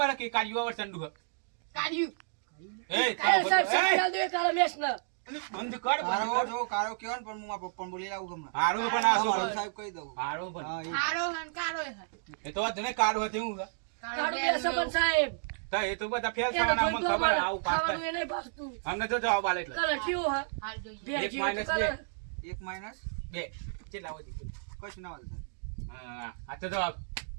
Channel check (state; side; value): silent; left; digital silence